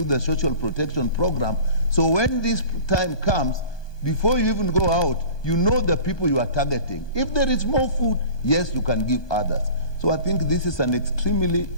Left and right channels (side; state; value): right; late; 1.2 ms